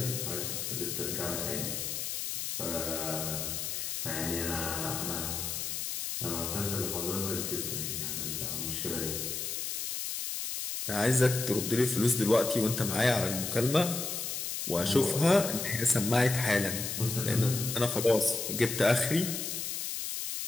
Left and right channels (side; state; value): left; noise; hiss, 3 dB below the sound